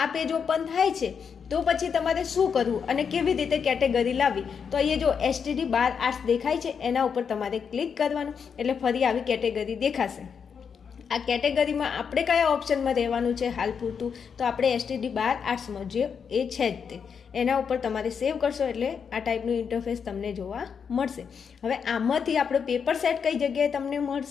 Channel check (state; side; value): quieter; right; 6.6 dB